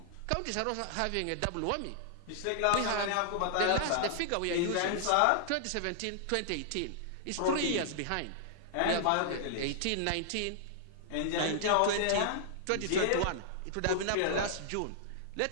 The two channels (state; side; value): different; both; correlation -0.01